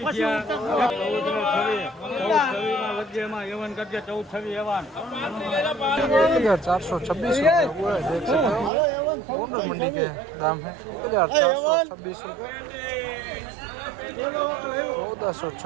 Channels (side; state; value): left; drops out; at 8.7 s